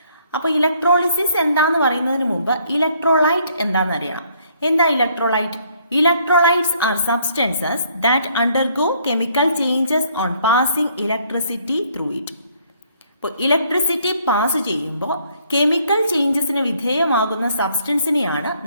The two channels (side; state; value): both; inverted; correlation -0.66